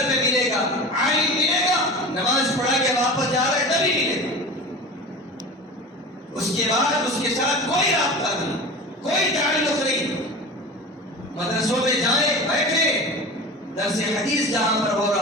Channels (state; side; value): normal; both; correlation 0.33